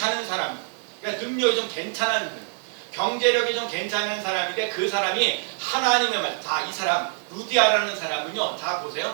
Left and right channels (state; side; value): silent; left; digital silence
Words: 사람, 그러니까 능력이 좀 괜찮은 거예요. 경제력이 좀 괜찮은 사람인데 그 사람이 하나님의 말, 자, 이 사람 루디아라는 사람은요, 자